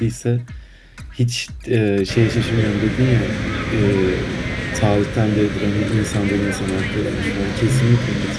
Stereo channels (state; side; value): identical; both; correlation 1.00